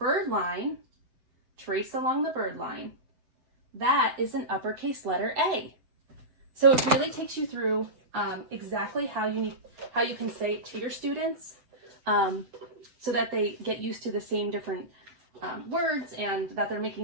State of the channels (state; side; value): late; left; 7.9 ms